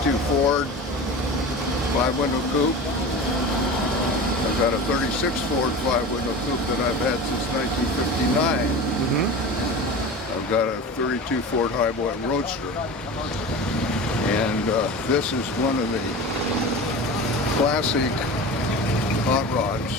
Ford 5-window coupe. I've got a 36 Ford 5-window coupe that I've had since 1959. I've got a 32 Ford Highboy Roadster. And this is one of the classic hot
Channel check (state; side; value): normal; both; correlation 0.32